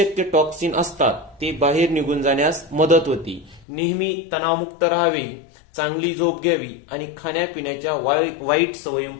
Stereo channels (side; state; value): right; drops out; at 3.7 s